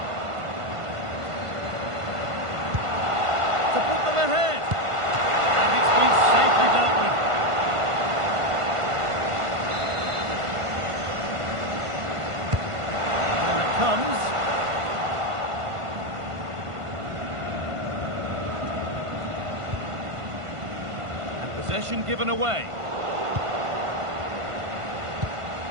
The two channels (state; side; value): late; left; 1.5 ms